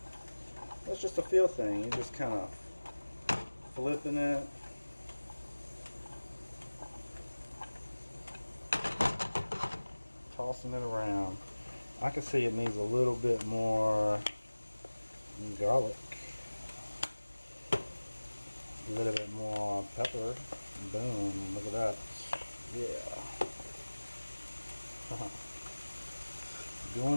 That's just a feel thing. You just kind of flipping it. Tossing it around. I can see it needs a little bit more garlic. A little bit more pepper. Boom, look at that. Yeah.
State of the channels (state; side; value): inverted; both; correlation -1.00